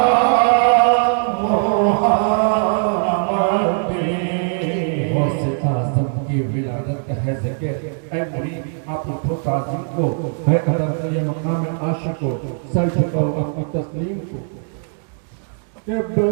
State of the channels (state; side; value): silent; left; 66 dB below the other